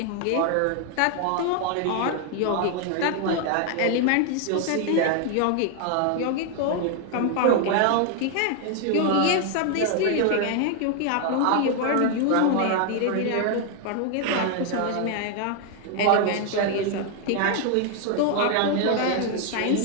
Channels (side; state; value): both; different; correlation 0.00